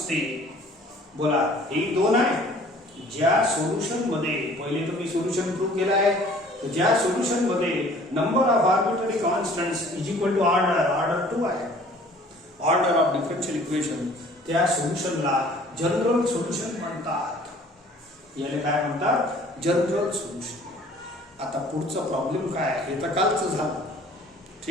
बोला हे दोन आहे. ज्या सोल्यूशन मध्ये पहिले तर मी सोल्यूशन प्रूव्ह केला आहे. ज्या सोल्यूशन मध्ये number of arbitrary constants is equal to order 2 आहे, ऑर्डर ऑफ डिफरन्शियल इक्वेशन, त्या सोल्यूशनला जनरल सोल्यूशन म्हणतात. याला काय म्हणतात? General solution. आता पुढचा प्रॉब्लेम काय आहे हे तर कालचं झालं.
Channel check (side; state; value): both; normal; correlation 0.52